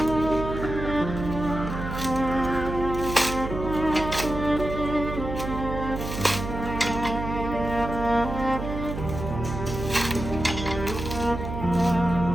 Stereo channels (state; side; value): noise; right; hum, 6 dB below the sound